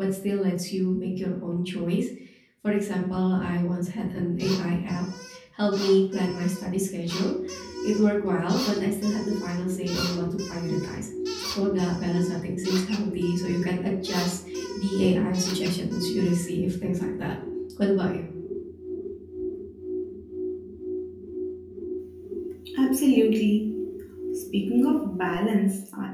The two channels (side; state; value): both; identical; correlation 1.00